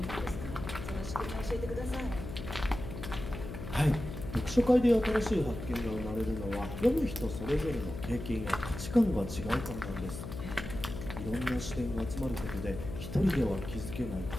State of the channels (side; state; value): left; noise; hum, 8 dB below the sound